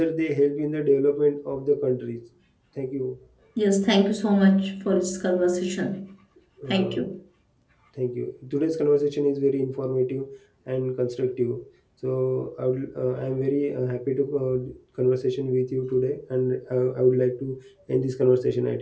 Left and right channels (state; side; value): identical; both; correlation 1.00